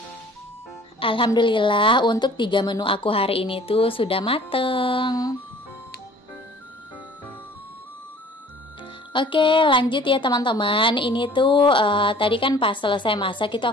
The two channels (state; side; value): normal; both; correlation 0.50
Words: Alhamdulillah untuk 3 menu aku hari ini tuh sudah mateng. Oke, lanjut ya teman-teman. Ini tuh tadi kan pas selesai masak itu